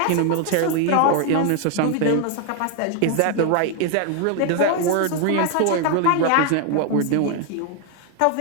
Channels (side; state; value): both; different; correlation 0.00